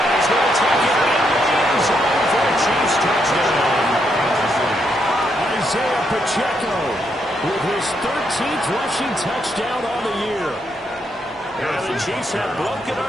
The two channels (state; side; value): normal; both; correlation 0.78